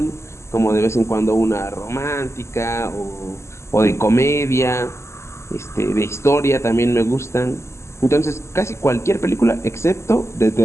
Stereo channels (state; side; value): late; right; 0.13 ms